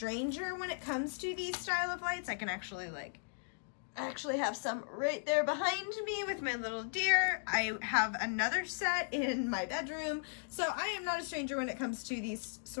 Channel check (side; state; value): right; silent; digital silence